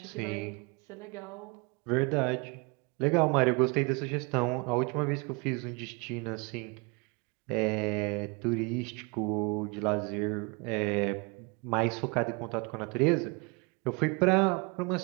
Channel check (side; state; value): left; quieter; 30.2 dB